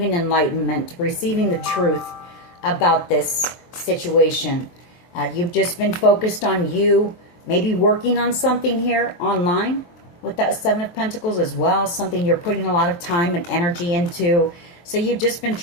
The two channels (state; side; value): late; right; 23 ms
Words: enlightenment, receiving the truth about this situation. You've just been focused on you, maybe working on something here online with that Seven of Pentacles as well, something you're putting a lot of time and energy into. So you've just been